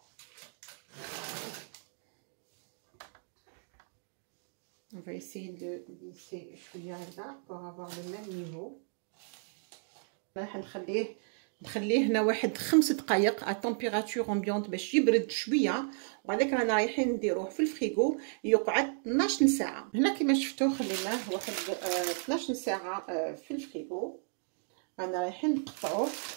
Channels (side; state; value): left; silent; digital silence